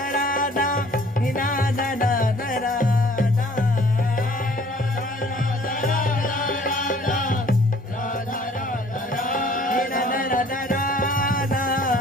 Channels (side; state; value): both; normal; correlation 0.55